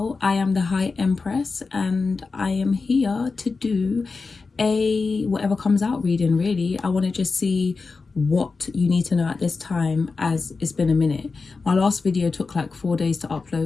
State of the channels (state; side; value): quieter; right; 4.3 dB